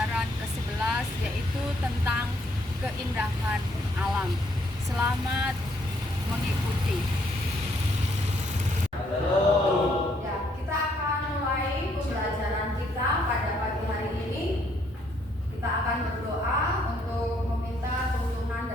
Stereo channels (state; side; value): normal; both; correlation 0.69